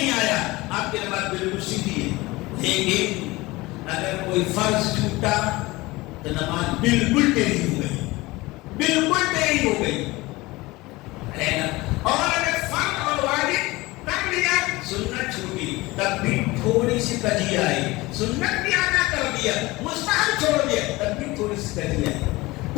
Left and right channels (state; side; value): quieter; right; 21.0 dB